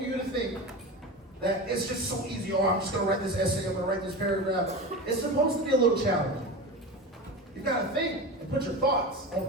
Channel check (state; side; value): normal; both; correlation 0.26